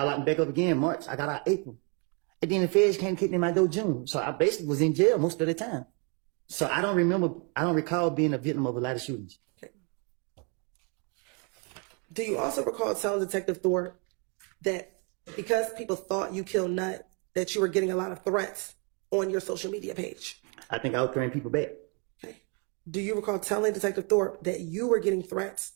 locked me back up again March. I got out April. And then the feds came kicking in my door June. So I basically was in jail most of the time. So I don't recall being a victim of a lot of shootings. Do you also recall telling Detective Thorpe that because people thought you killed Nut, that you were getting a lot of threats on your social media page? I think I was throwing people back. Okay. Do you recall telling Detective Thorpe that you were getting threats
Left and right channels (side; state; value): left; quieter; 35.4 dB